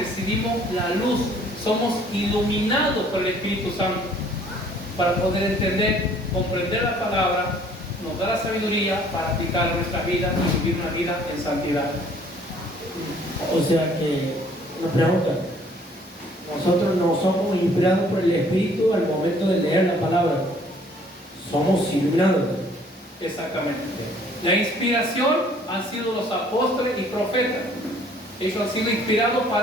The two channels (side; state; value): both; normal; correlation 0.58